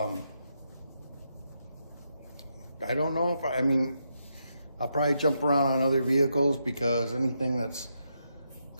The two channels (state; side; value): inverted; both; correlation -0.82